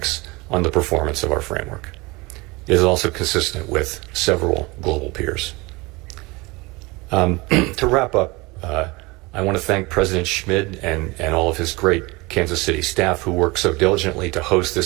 on the performance of our framework. It is also consistent with several global peers. To wrap up, I want to thank President Schmid and all of his great Kansas City staff who work so diligently to host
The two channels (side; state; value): left; quieter; 24.2 dB